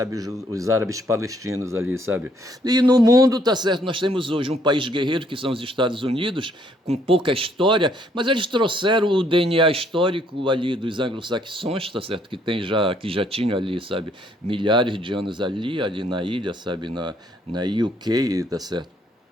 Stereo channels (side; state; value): both; normal; correlation 0.67